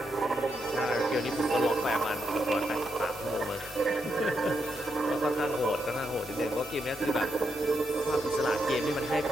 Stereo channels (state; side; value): normal; both; correlation 0.81